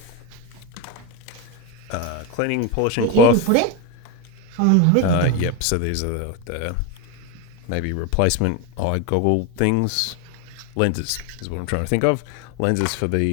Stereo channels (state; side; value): different; both; correlation 0.03